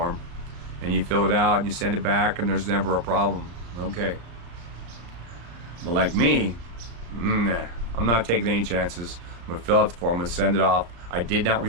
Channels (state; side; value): late; left; 35 ms